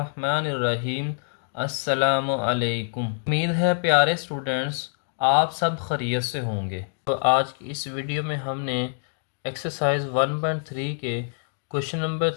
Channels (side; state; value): right; silent; digital silence